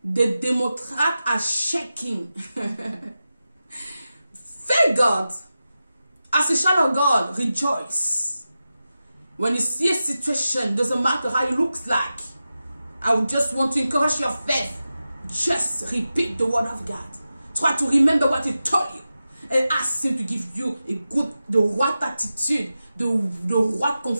The Democrats are shaking. Thank God. As a child of God, rejoice. When you see a situation, doesn't matter how it looks like. I would just want to encourage your faith. Just repeat the word of God. Try to remember what he told you. And ask him to give you the right attitude, the right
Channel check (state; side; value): inverted; both; correlation -0.93